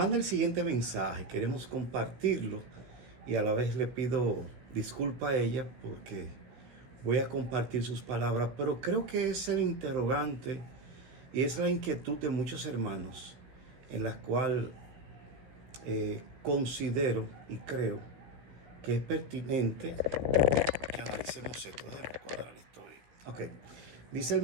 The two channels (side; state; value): left; late; 16 ms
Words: el siguiente mensaje. Queremos compartirlo y a la vez le pido disculpa a ella porque voy a compartir sus palabras, pero creo que es el interrogante y es la inquietud de muchos hermanos en la cual considero y creo que es pertinente que analicemos esto. Déjame cuadrar esto ahí. Ok. Dice el